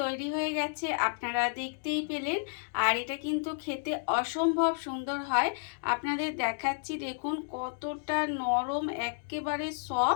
তৈরি হয়ে গেছে, আপনারা দেখতেই পেলেন। আর এটা কিন্তু খেতে অসম্ভব সুন্দর হয়। আপনাদের দেখাচ্ছি, দেখুন কতটা নরম, একেবারে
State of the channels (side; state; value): right; silent; digital silence